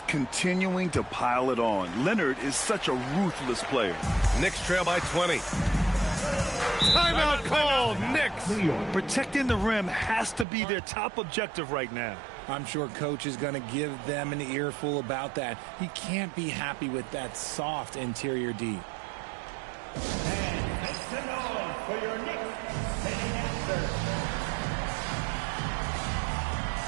continuing to pile it on. Leonard is such a ruthless player. Knicks trail by 20. Timeout called, Knicks. Protecting the rim has to be their top objective right now. I'm sure coach is going to give them an earful about that. He can't be happy with that soft interior D. And make some noise for your Knicks sitting answer.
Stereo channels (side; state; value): left; drops out; at 10.5 s